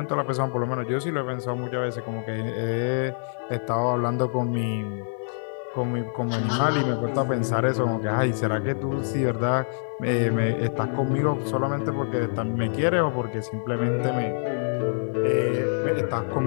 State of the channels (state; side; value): silent; right; digital silence